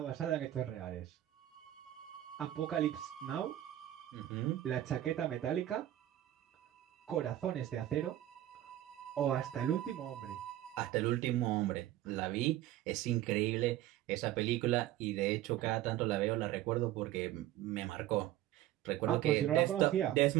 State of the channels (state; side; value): quieter; left; 13.6 dB